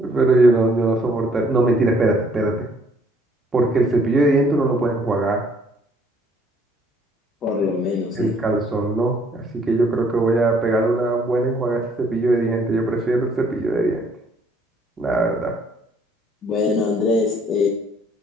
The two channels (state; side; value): normal; both; correlation 0.63